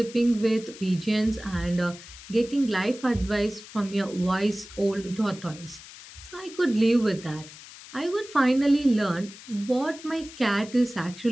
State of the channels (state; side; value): noise; left; hiss, 17 dB below the sound